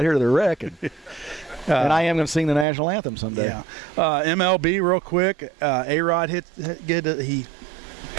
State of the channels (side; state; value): left; drops out; at 2.7 s